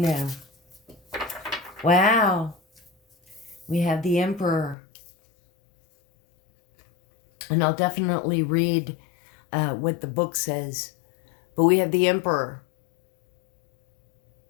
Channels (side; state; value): right; drops out; at 4.8 s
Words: Wow. We have the Emperor. And I'll definitely read what the book says. But we have the Emperor.